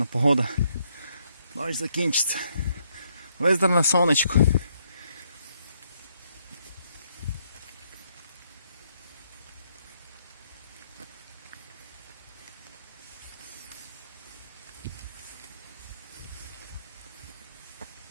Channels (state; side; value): inverted; both; correlation -0.73